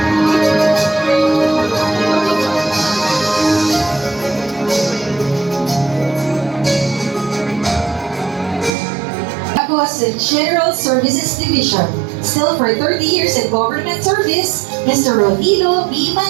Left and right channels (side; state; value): left; drops out; at 8.7 s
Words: Sa General Services Division. Still for 30 years in government service, Mr. Rodilo B.